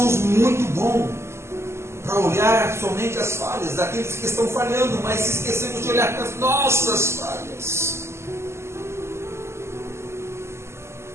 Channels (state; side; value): late; left; 0.13 ms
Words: muito bons para olhar somente as falhas daqueles que estão falhando, mas se esquecemos de olhar para as nossas falhas.